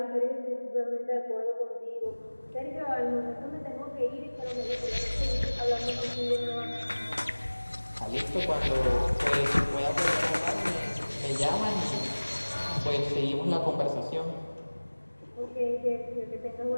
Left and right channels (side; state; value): both; inverted; correlation -1.00